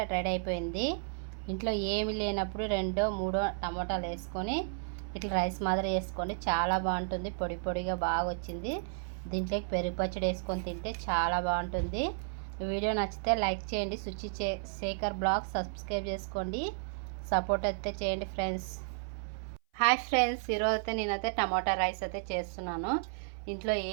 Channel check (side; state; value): left; silent; 55 dB below the other